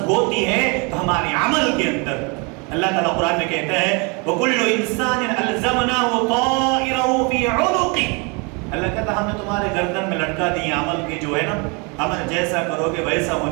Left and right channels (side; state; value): left; quieter; 31.4 dB